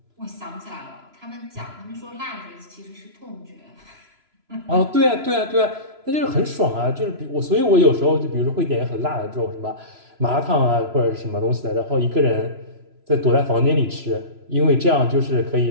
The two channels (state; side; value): late; left; 3.0 ms